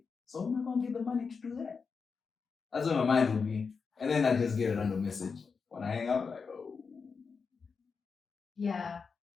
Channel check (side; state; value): right; quieter; 5.3 dB